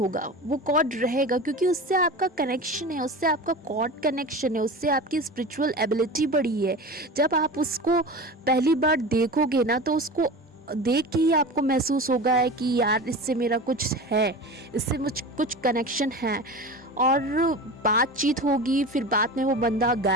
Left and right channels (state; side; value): normal; both; correlation 0.31